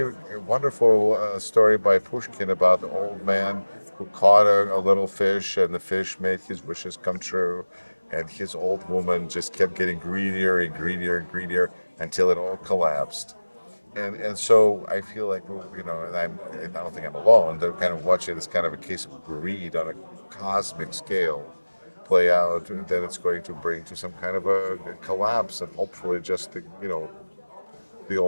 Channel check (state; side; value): inverted; both; correlation -1.00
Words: wonderful story by Pushkin about the old man who caught a little fish, and the fish made his wishes come true, and his old woman just kept getting greedier and greedier and greedier until it all collapsed. And so I feel like, and I don't think I'm alone. They're kind of watching this kind of a case of greed on a cosmic scale play out that it's going to bring to some kind of a collapse, and hopefully just the